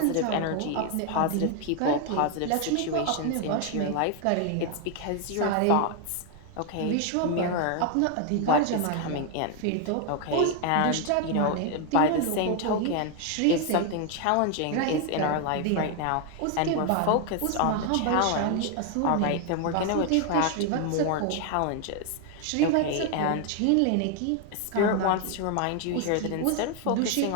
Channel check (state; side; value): different; both; correlation 0.00